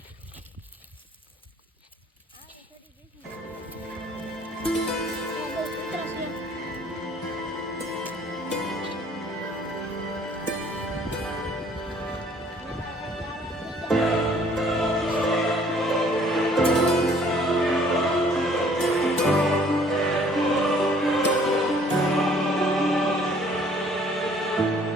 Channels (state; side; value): normal; both; correlation 0.58